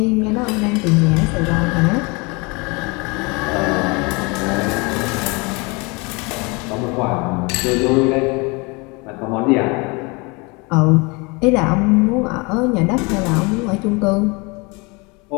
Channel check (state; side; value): quieter; right; 28.0 dB